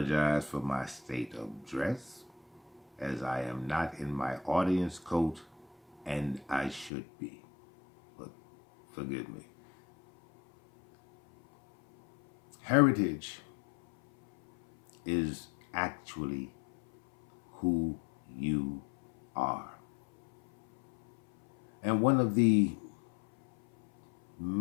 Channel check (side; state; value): right; drops out; at 6.9 s